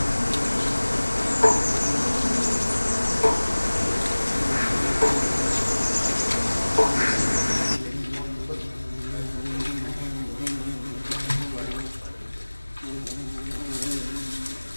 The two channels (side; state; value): both; inverted; correlation -1.00